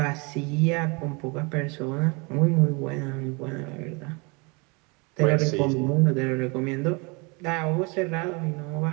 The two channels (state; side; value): quieter; left; 29.9 dB